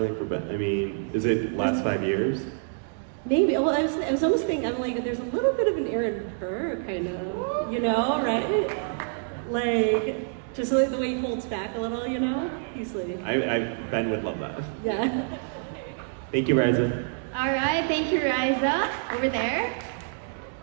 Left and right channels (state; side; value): silent; left; digital silence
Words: for Ben. I mean, is it last 5 years? Maybe. Well, I was almost thinking, I'm like, there's a little bit of an Aaron Burr kind of, you know, right? Like, just like the way he holds back a little, you know? He's like... Ben would love that. Yeah. Thank you, Riza. All right, thank you, Riza. Over there.